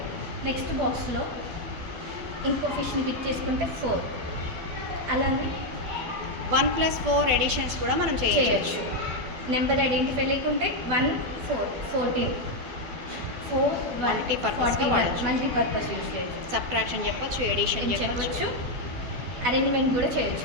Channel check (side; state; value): left; late; 12 ms